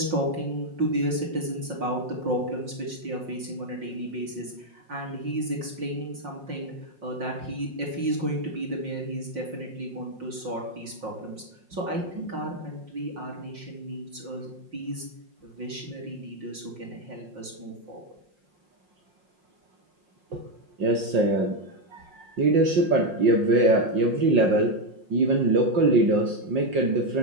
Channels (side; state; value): left; late; 5.6 ms